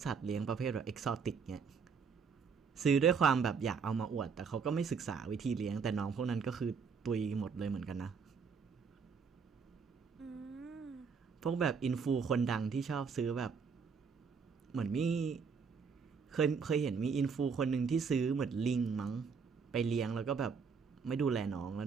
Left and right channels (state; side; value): quieter; left; 5.8 dB